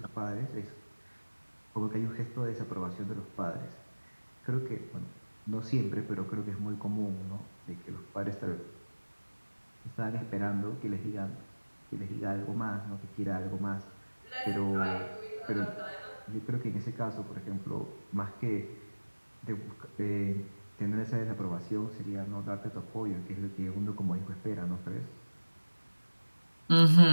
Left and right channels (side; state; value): both; inverted; correlation -1.00